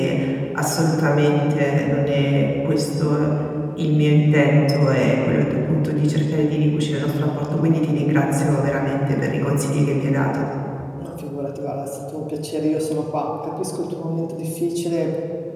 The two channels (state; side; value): identical; both; correlation 1.00